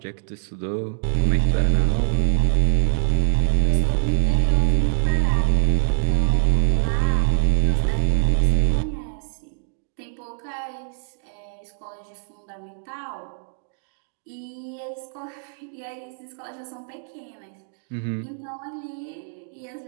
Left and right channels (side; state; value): left; silent; digital silence